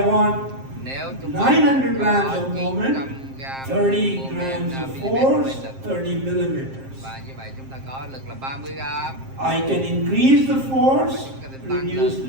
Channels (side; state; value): left; late; 7.5 ms